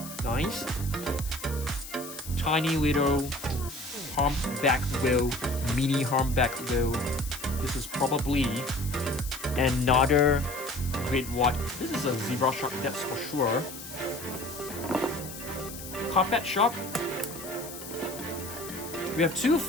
Nice. Tiny little humpback whale, mini humpback whale. This is probably another great white. This is a zebra shark, that's for sure. Carpet shark. We have two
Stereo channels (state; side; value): noise; left; hiss, 12 dB below the sound